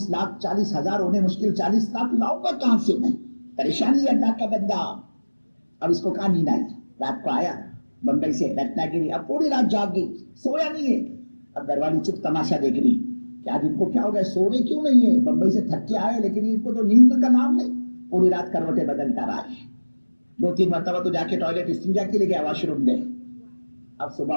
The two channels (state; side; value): inverted; both; correlation -1.00